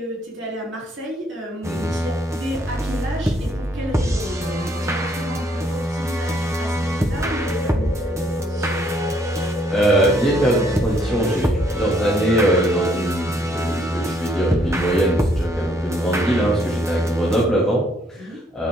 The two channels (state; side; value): normal; both; correlation 0.68